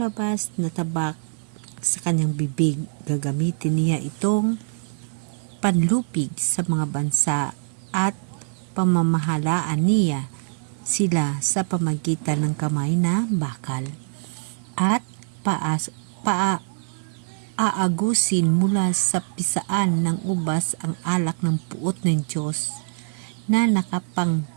na tabak sa kanyang bibig. Gagamitin niya itong panlupig sa mga bansa at pamamahalaan niya sila sa pamagitan ng kamay na bakal at aagusin mula sa pisaan ng ubas ang alak ng puot ng Diyos na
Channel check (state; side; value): silent; left; 63 dB below the other